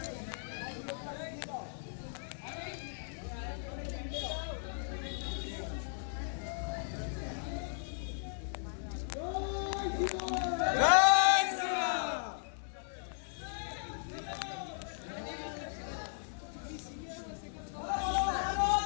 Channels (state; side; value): silent; right; digital silence